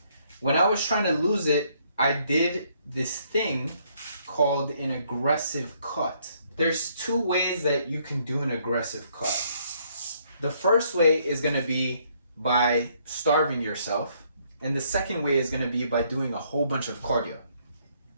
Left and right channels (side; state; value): both; inverted; correlation -0.68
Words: When I was trying to lose it, I did this thing called an aggressive cut. There's 2 ways that you can do an aggressive cut. The first way is going to be by starving yourself, and the second way is going to be by doing a whole bunch of cardio.